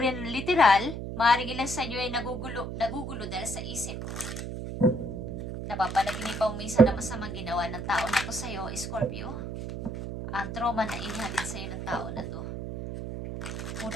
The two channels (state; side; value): noise; right; hum, 6 dB below the sound